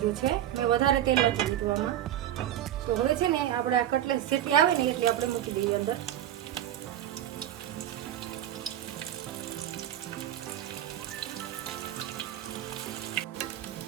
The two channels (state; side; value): quieter; left; 11.9 dB